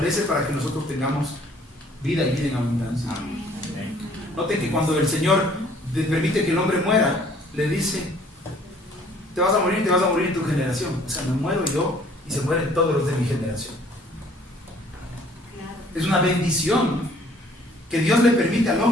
para que nosotros tengamos vida y vida en abundancia. Noten que cuando el Señor permite que el hombre muera, le dice, te vas a morir en tu generación. O sea, me muero yo y se mueren todos los de mi generación. Es una bendición que Dios le permite al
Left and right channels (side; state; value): both; normal; correlation 0.57